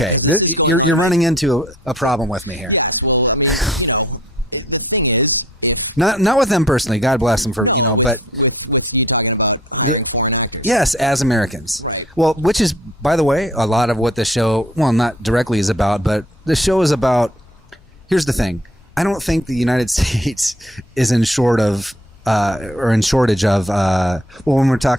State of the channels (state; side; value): normal; both; correlation 0.56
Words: Because this is going on. You're running into a problem with me here. Yes, well, I mean, the thing is, if not with them personally, God bless them for with you talking about hiring foreign actors. Yes, as Americans, right? Well, which is, by the way, a lot of what the show, well, not directly is about, but the show is about. Here's the thing. I don't think the United States is in shortage of. When we're